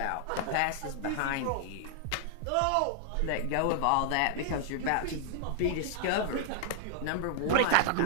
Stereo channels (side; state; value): both; different; correlation -0.01